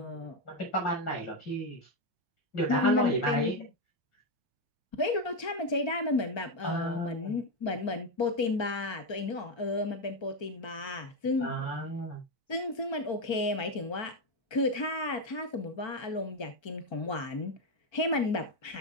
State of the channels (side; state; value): right; late; 1.3 ms